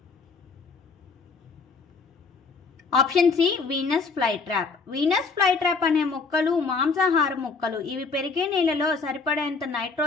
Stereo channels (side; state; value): right; quieter; 4.5 dB